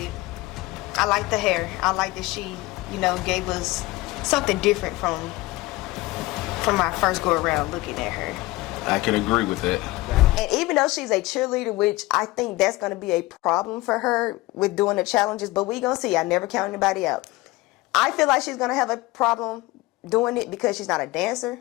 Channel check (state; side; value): quieter; right; 20.3 dB